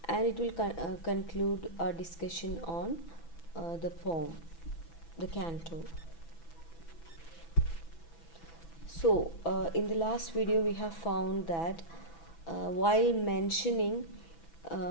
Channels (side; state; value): right; late; 6.0 ms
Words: and it will conclude our discussion on the poem, the canto. So, in the last video, we have found that while mentioning